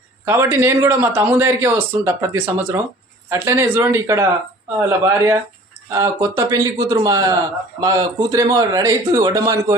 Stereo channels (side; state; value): both; normal; correlation 0.48